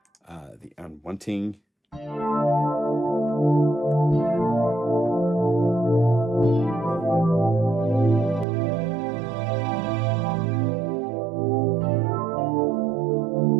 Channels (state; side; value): drops out; left; at 8.5 s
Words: the unwanting. You